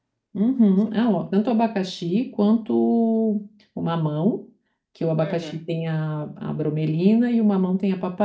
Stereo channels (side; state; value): both; identical; correlation 1.00